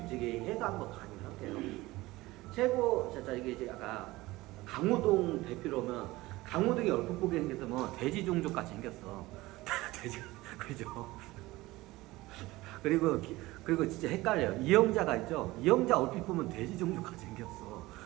해서 한번 강의를 할게요. 최고 이게 이제 아까 강호동 대표로면 강호동이 얼핏 보게 생겼으면 돼지 종족 같이 생겼어. 돼지 그죠? 그리고 진짜 헷갈려요. 이영자가 있죠? 이영자 얼핏 보면 돼지 종족같이 생겼어.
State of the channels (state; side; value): quieter; left; 19.4 dB